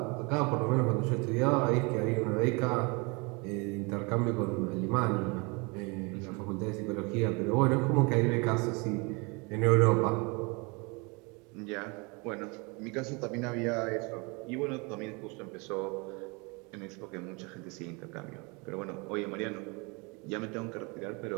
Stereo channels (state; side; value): quieter; left; 29.4 dB